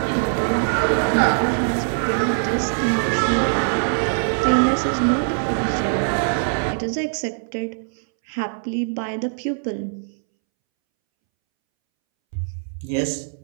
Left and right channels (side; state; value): left; silent; 64 dB below the other